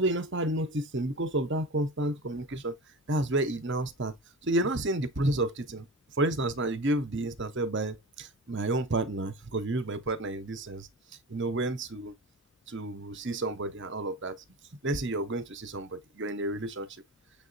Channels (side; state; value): both; normal; correlation 0.31